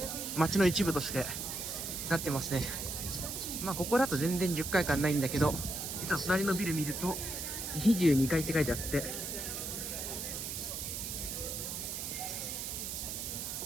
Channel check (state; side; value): noise; right; hiss, 5 dB below the sound